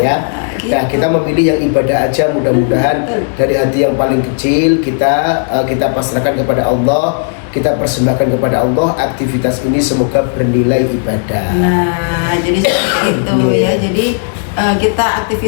ya. Nah, kita memilih yang ibadah aja, mudah-mudahan dari hati yang paling kecil kita pasrahkan kepada Allah, kita persembahkan kepada Allah. Aktivitas ini semoga bernilai ibadah. Nah, jadi seperti itu ya. Jadi kita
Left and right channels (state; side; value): silent; right; 68 dB below the other